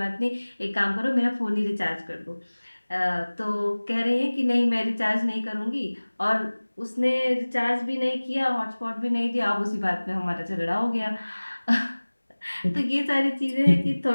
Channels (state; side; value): inverted; both; correlation -1.00